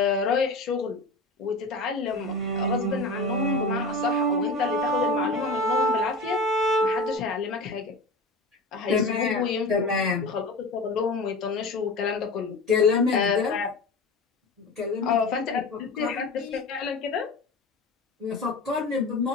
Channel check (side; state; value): right; quieter; 3.1 dB